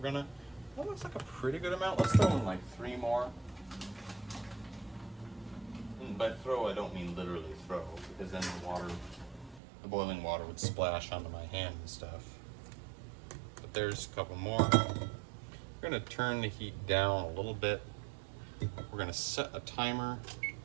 that looks like a pretty good amount. Let's throw in like 3 more. And by throw, I don't mean literally throw, because then the boiling water would splash onto my hand and stuff. But there's a couple more. We're gonna turn the heat down a little bit. We're gonna set a timer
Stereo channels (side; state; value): left; drops out; at 9.6 s